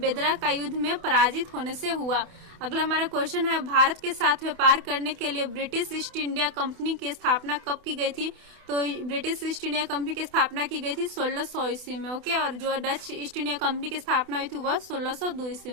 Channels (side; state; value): left; late; 28 ms